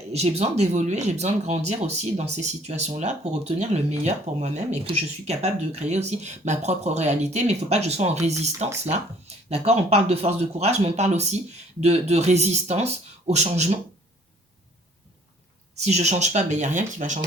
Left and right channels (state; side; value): normal; both; correlation 0.58